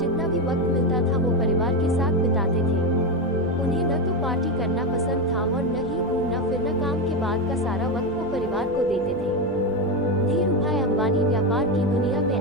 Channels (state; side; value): noise; left; rumble, 18 dB below the sound